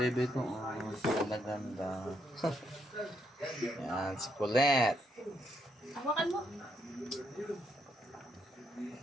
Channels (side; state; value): both; normal; correlation 0.76